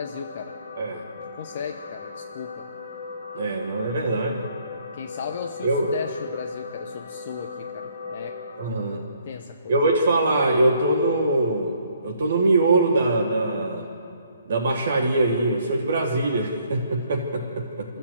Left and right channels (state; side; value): inverted; both; correlation -0.66